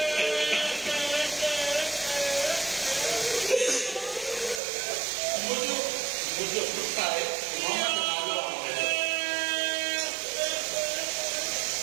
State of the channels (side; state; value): left; drops out; at 4.6 s